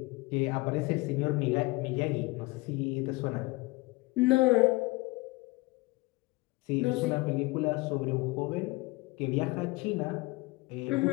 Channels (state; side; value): quieter; right; 23.4 dB